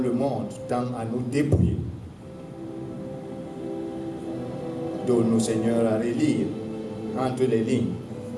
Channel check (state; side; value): identical; both; correlation 1.00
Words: le monde tend à nous dépouiller. Donne-nous, Seigneur, à relire entre les lignes